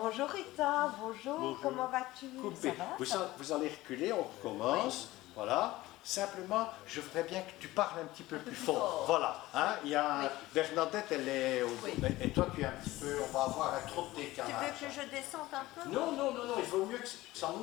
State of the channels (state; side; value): quieter; right; 17.8 dB